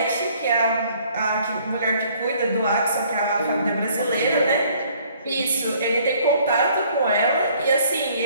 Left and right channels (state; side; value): inverted; both; correlation -0.60